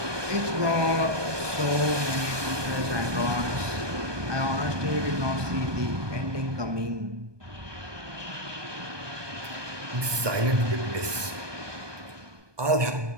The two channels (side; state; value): left; late; 1.2 ms